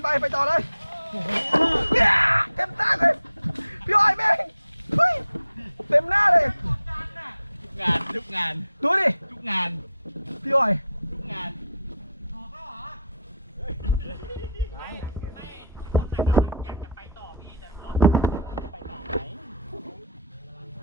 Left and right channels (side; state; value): both; inverted; correlation -0.63